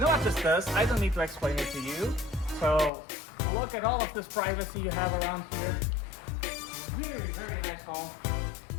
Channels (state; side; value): drops out; right; at 2.9 s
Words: what this does? I don't need to explain it to you. So look at all of this privacy you have around here. Very, very nice home.